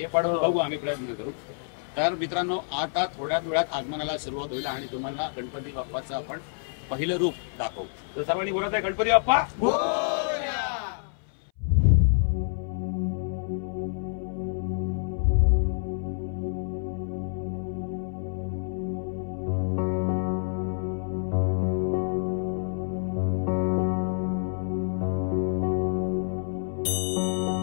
पण बघू आम्ही प्रयत्न करू. तर मित्रांनो, आता थोड्या वेळात आगमनाला सुरुवात होईल आणि तुम्हाला गणपती बाप्पाचं आपण पहिलं रूप दाखवू. तर सर्वांनी बोलत आहे गणपती बाप्पा.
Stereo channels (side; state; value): right; silent; 60 dB below the other